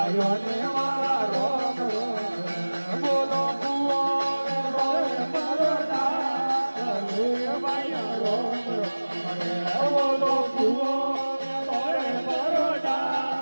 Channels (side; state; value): both; inverted; correlation -1.00